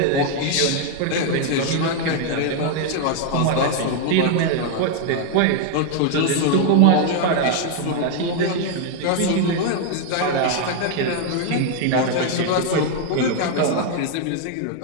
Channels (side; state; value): both; different; correlation 0.00